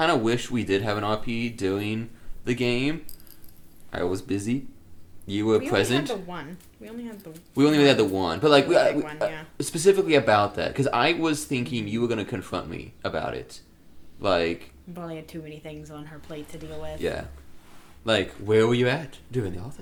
of wish we did have an RP doing the game. I was busy. You were present. We only had the one. We only had the one, but like yeah. Specifically about that, because I was thinking you were gonna confront me about it, like. Molly had too many things on her plate to deal with. Yeah, like where were you at doing the whole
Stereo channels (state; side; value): identical; both; correlation 1.00